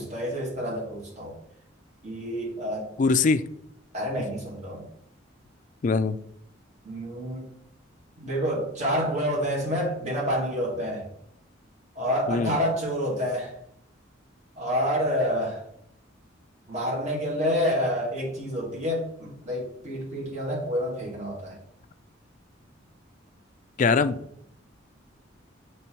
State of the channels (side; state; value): both; normal; correlation 0.24